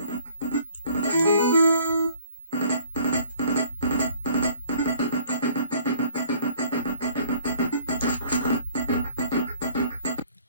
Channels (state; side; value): inverted; both; correlation -0.57